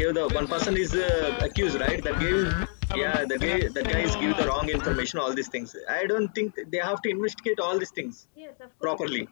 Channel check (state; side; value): silent; right; 60 dB below the other